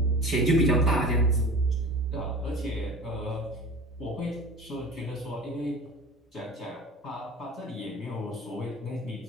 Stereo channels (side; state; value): both; normal; correlation 0.37